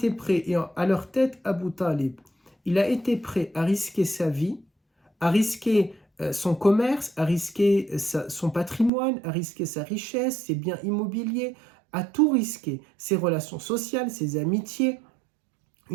prêts, et à leur tête Abu Talib, il a été prêt à risquer sa vie, à risquer son commerce, à risquer son patrimoine, à risquer sa richesse, ses biens immobiliers, à tout risquer, ses relations sociales, ses amitiés,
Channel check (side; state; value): left; drops out; at 8.9 s